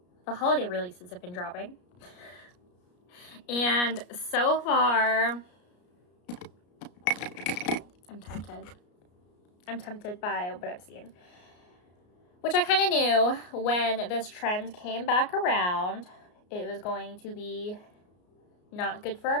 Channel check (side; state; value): right; late; 33 ms